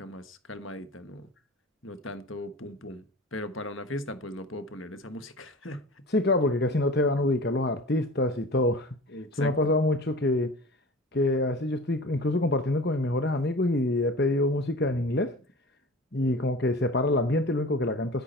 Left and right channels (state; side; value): normal; both; correlation 0.38